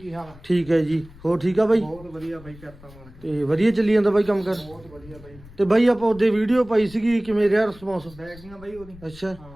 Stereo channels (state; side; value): noise; left; rumble, 21 dB below the sound